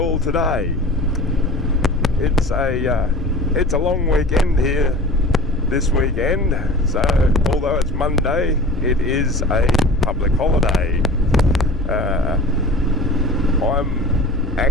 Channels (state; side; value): noise; left; hum, 9 dB below the sound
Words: today? It's a long weekend here this weekend, so although it's Monday, it is a public holiday. I'm